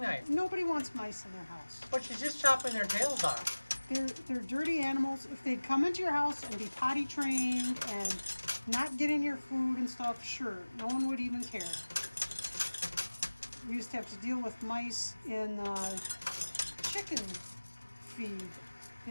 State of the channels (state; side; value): inverted; both; correlation -1.00